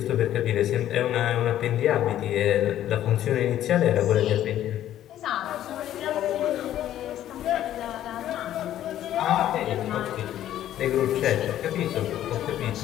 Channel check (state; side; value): quieter; right; 12.1 dB